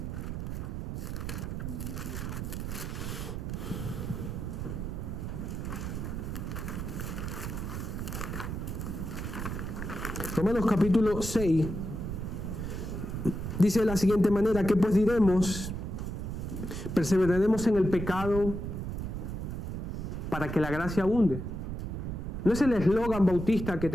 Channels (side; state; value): right; noise; rumble, 4 dB below the sound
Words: Romanos capítulo 6 dice de la siguiente manera: ¿qué pues diremos? ¿Perseveraremos en el pecado para que la gracia abunde? No es el eslogan bautista que